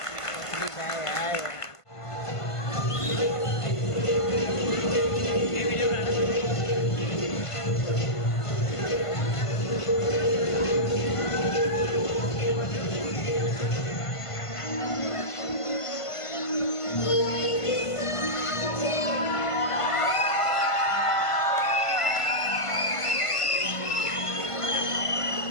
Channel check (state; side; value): late; right; 1.5 ms